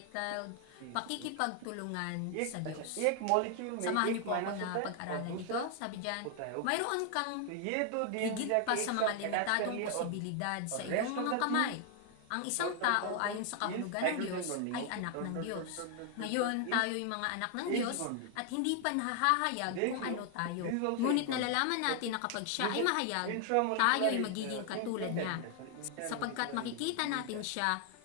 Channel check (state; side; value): different; both; correlation 0.00